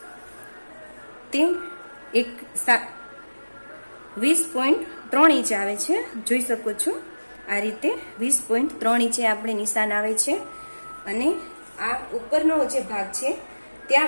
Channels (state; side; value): inverted; both; correlation -1.00